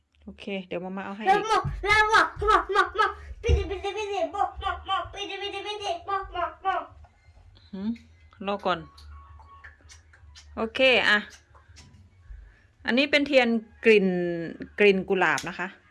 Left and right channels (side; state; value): both; identical; correlation 1.00